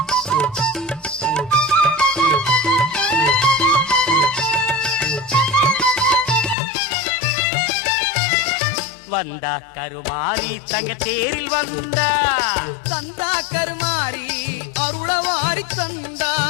வந்தா கருமாரி தங்க தேரில் வந்தா தந்தா கருமாரி அருளவாரி தந்தா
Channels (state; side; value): drops out; right; at 6.6 s